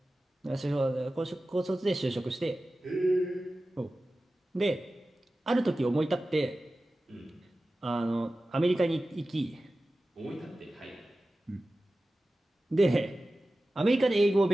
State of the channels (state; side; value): normal; both; correlation 0.95